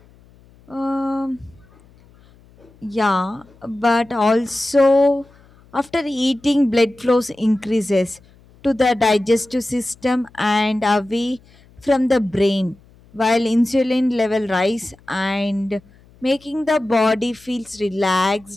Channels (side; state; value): left; noise; hum, 28 dB below the sound